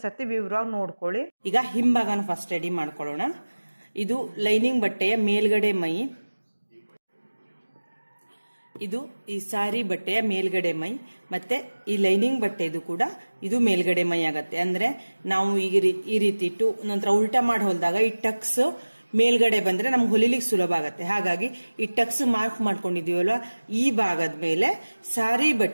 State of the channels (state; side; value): inverted; both; correlation -1.00